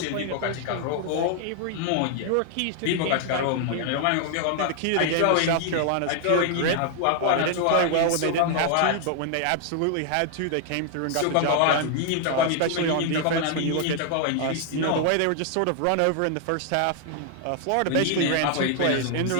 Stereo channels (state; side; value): different; both; correlation 0.00